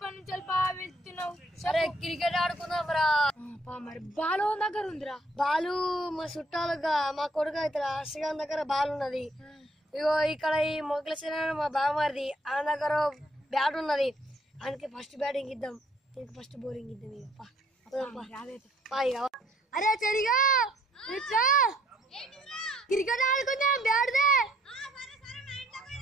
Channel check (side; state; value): both; normal; correlation 0.64